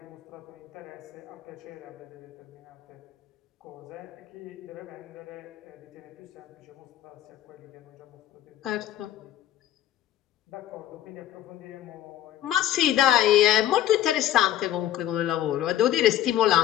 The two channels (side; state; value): right; quieter; 12.4 dB